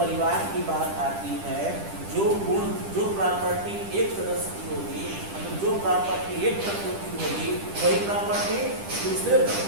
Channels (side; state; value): left; late; 10 ms